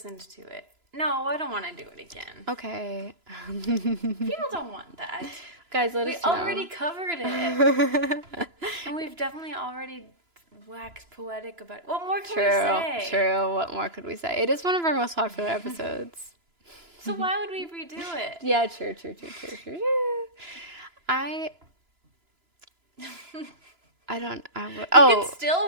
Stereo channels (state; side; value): late; left; 2.9 ms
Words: to it. No, I don't want to do it again. Okay. People don't want that. Guys, let us know. We already covered it. And we've definitely already waxed poetic about it. What more can we say? True. What more could we say? It is one of our most popular episodes. So why would we redo it? Yeah, true. You can